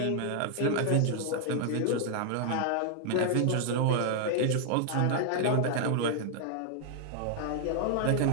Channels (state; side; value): different; both; correlation 0.00